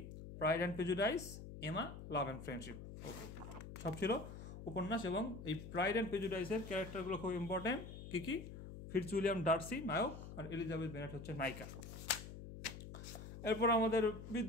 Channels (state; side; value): noise; left; hum, 11 dB below the sound